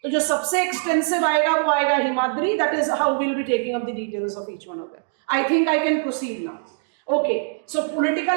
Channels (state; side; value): silent; left; digital silence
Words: तो जो सबसे एक्सटेंसिव आएगा वो आएगा Himadri. That is how will be taking up the details of each one of them. I think I can proceed now. Okay, so